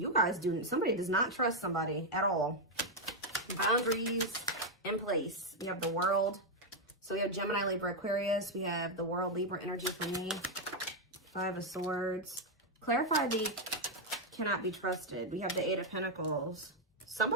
guys somebody does not trust somebody at all. Boundaries in place. We have the World. So we have Gemini, Libra, Aquarius. We have the World, Libra energy for me. Five of Swords. Clarify the cannot be trusted. We have the Eight of Pentacles.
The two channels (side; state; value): both; normal; correlation 0.01